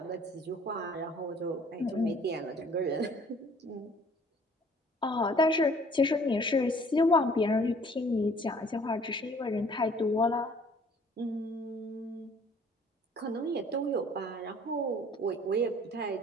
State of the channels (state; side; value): normal; both; correlation 0.56